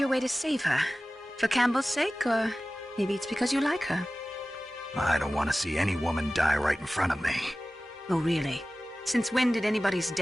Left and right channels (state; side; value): normal; both; correlation 0.97